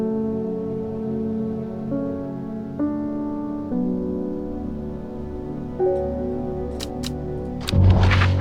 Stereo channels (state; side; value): identical; both; correlation 1.00